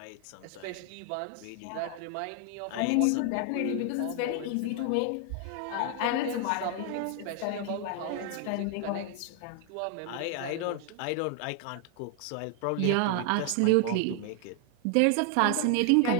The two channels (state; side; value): different; both; correlation 0.00